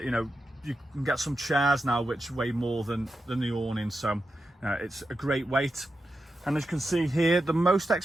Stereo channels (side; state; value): both; normal; correlation 0.89